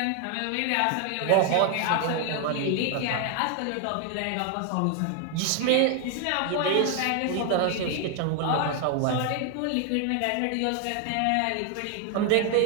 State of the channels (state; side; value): different; both; correlation 0.00